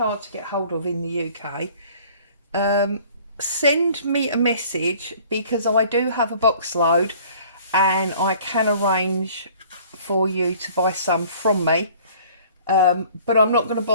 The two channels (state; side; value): inverted; both; correlation -0.52